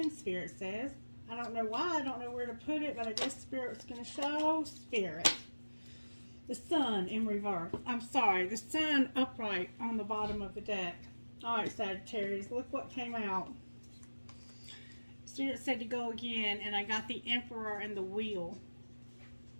Spirit says. I don't know why. I don't know where to put it, but I guess Spirit's going to show Spirit. The sun in reverse. I'm sorry. The sun upright on the bottom of the deck. Alright, Sagittarius. Look what came out. Spirit said to go again, and I got the Emperor and the Wheel.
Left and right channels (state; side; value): inverted; both; correlation -1.00